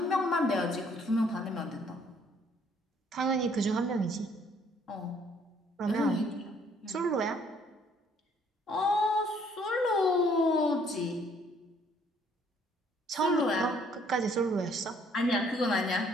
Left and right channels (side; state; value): both; normal; correlation 0.63